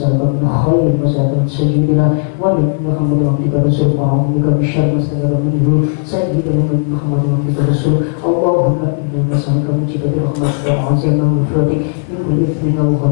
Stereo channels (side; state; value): right; silent; 67 dB below the other